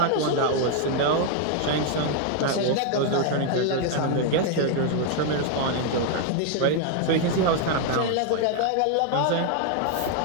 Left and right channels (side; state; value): both; different; correlation 0.00